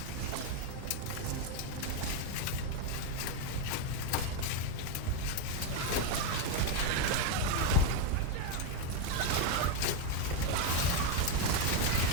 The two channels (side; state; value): both; different; correlation 0.02